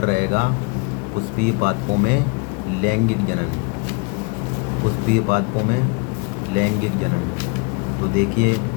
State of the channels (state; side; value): quieter; right; 30.0 dB